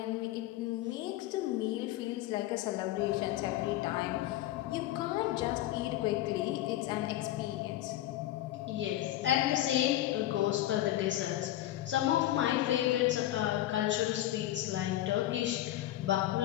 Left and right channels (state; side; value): quieter; right; 14.2 dB